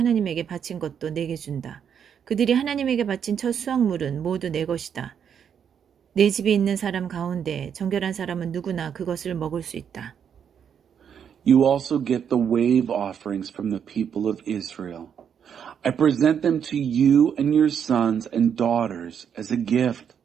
바친 것도 내게 준다. 그들이 하나님에게 바친 첫 수확물은 모두 내 것이다. 내 집에 있는 사람 가운데 정결한 사람은 누구나 그것을 먹을 수 있다. You also get the wave offerings from the people of Israel. I present them to you and your sons and daughters as a gift.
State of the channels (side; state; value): left; quieter; 8.0 dB